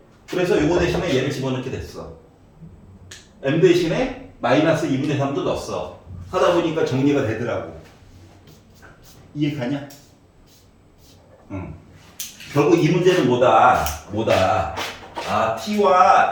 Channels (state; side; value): identical; both; correlation 1.00